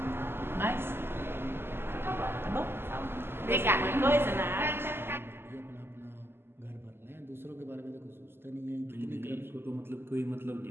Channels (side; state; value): left; late; 0.11 ms